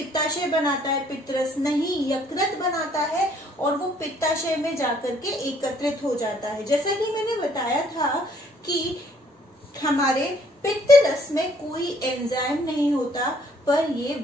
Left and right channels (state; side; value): normal; both; correlation 0.63